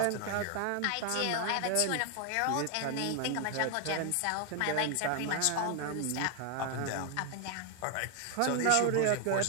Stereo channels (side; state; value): both; different; correlation 0.01